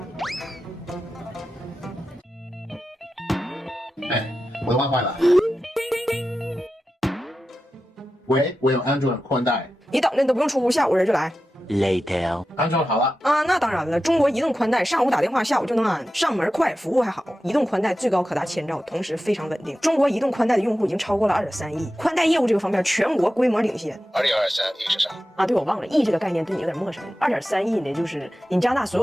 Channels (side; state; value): both; normal; correlation 0.92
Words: 哎，我的 WiFi 了。喂，我有安卓宽带。你等着，你都不用出屋，下午人就来。Later，安装好了啊，那当然了，中国移动宽带上午打电话，下午就能安，上门快，服务还好。移动宽带最高可达1000兆，同时非常稳定。中国移动宽带的用户已经超过了2.3亿，宽带业务这个方面全国规模领先。2023亿是啥？啊，对，我忘了，亿这个概念对你有点陌生。2.3亿呢，就是你加拿大所